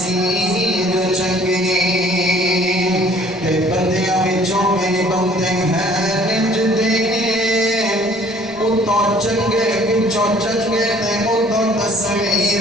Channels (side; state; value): left; noise; rumble, 27 dB below the sound